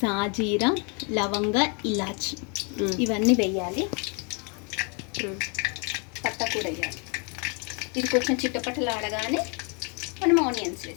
లవంగ, ఇలాచి ఇవన్నీ వేయాలి. పత్తా కూడా వేయాలి. ఇది కొంచెం చిట్టపట్టలు ఆడగానే మనం ఆనియన్స్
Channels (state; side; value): quieter; right; 35.7 dB